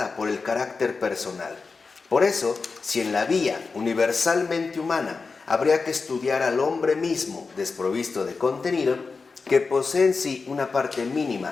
por el carácter personal. Por eso, si en la vía universalmente humana habría que estudiar al hombre mismo desprovisto de contenido, que posee en sí una parte mínima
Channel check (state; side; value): quieter; right; 4.5 dB